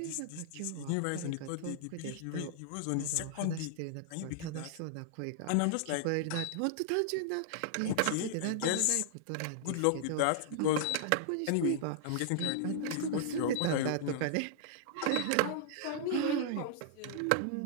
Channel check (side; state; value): both; different; correlation -0.01